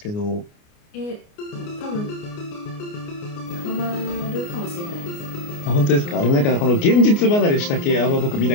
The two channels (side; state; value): right; late; 29 ms